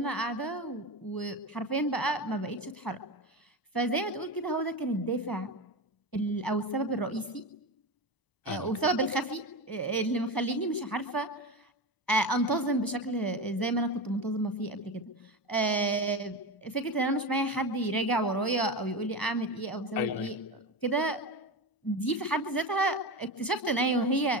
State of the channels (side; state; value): right; late; 1.0 ms